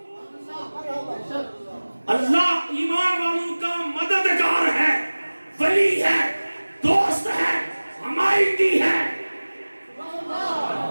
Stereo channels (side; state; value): both; inverted; correlation -1.00